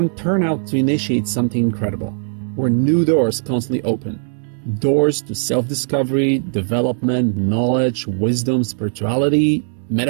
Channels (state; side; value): silent; left; 66 dB below the other